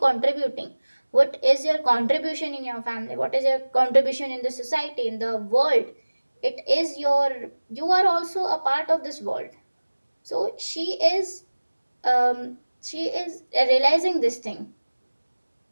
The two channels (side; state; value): both; inverted; correlation -1.00